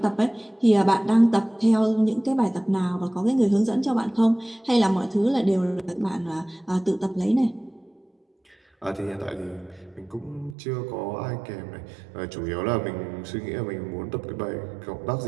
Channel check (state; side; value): drops out; left; at 10.6 s